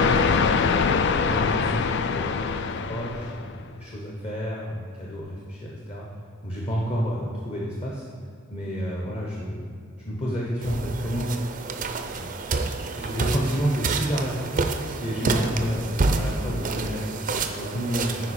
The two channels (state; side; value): normal; both; correlation 0.47